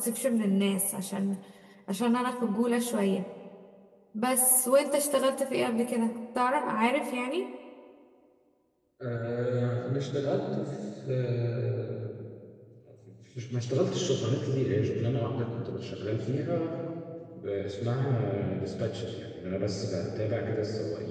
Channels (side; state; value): both; identical; correlation 1.00